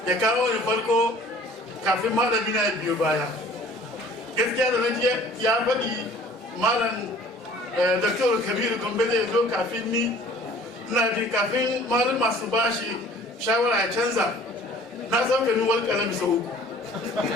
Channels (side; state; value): both; normal; correlation 0.50